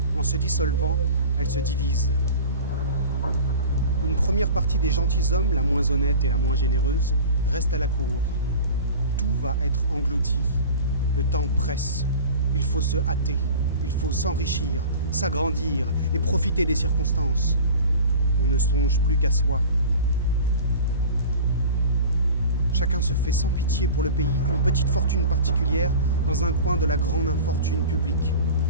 En se dissolvant, elle se divise. Une première partie des gentilshommes, la moins honnête et la moins généreuse, reste à la cour. Tout va être englouti. Le temps presse. Il faut se hâter. Il faut s'enrichir, s'agrandir et profiter des circonstances. On ne songe plus qu'à soi. Chacun se fait sans pitié pour le pays une petite fortune particulière dans un coin de la grande infortune publique.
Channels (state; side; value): inverted; both; correlation -0.38